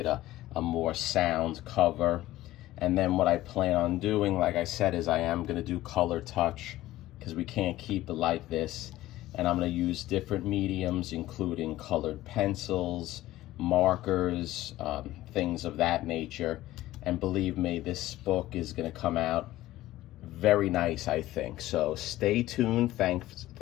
a more sound cover. And then what I plan on doing, like I said, is I am going to do color touch, because we can't keep it like this. And I'm going to use different mediums, including colored pencils, markers, things of that nature. And believe me, this book is going to come out very nice, I think. So stay tuned.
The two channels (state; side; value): quieter; right; 15.8 dB